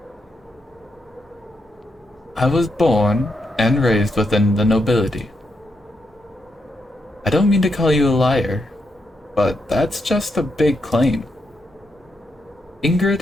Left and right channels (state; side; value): normal; both; correlation 0.81